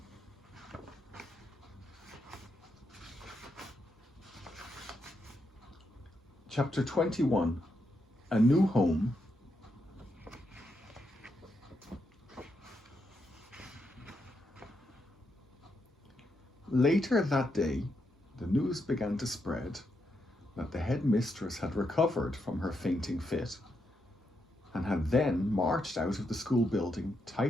Chapter 21, A New Home. Later that day, the news began to spread that the headmistress had recovered from her fainting fit and had then marched out of the school building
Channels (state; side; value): normal; both; correlation 0.82